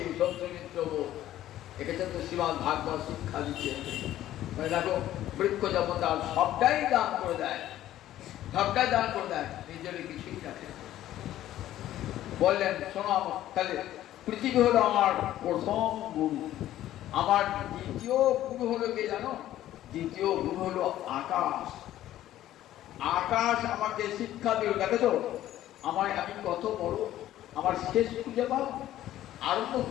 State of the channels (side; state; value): right; quieter; 13.3 dB